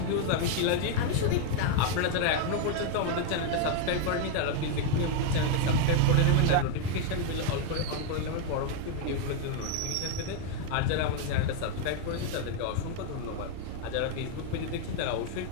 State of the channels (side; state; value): both; different; correlation 0.01